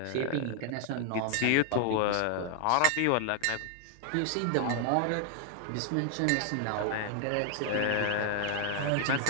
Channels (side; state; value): both; different; correlation 0.00